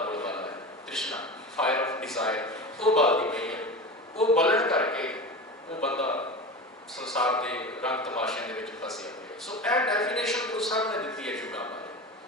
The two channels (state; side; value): normal; both; correlation 0.28